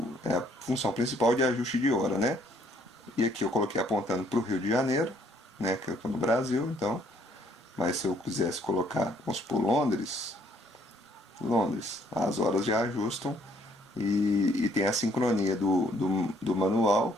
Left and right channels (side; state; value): both; normal; correlation 0.65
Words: a função principal de ajuste de hora, né? E aqui eu coloquei apontando para o Rio de Janeiro, né? Que eu estou no Brasil, então. Mas se eu quisesse colocar, vamos supor, Londres, as horas já ajustam e tem a sincronia do manual,